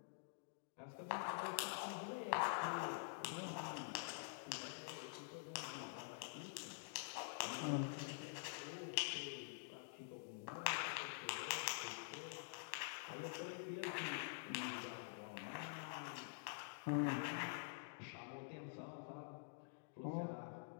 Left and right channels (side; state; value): right; silent; digital silence